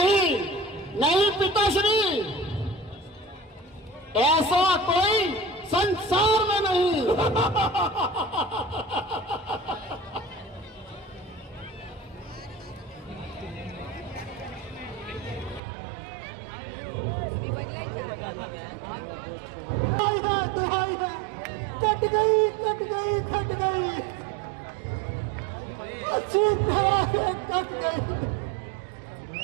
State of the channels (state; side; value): drops out; left; at 15.6 s